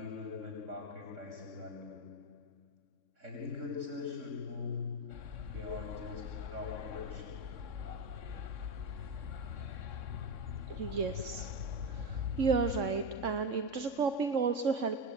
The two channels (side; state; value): left; late; 3.6 ms